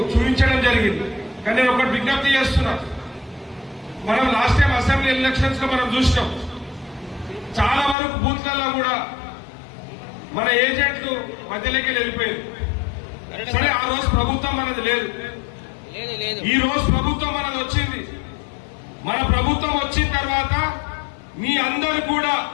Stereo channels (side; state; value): right; drops out; at 8.0 s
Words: చూపించడం జరిగింది. కానీ నేను ఒకటి విజ్ఞప్తి చేస్తున్నా, మనం లాస్ట్ టైం అసెంబ్లీ ఎలక్షన్స్ లో మనం చూసినాం, చాలా వరకు బూత్లలో కూడా మన ఏజెంట్లు మధ్యలోకి వెళ్ళిపోయారు. సరే, ఆ రోజు ప్రభుత్వం మనది లేదు, ఈ రోజు ప్రభుత్వం మనది వచ్చింది. మన ప్రభుత్వం వచ్చిన తర్వాత మీ అందరు కూడా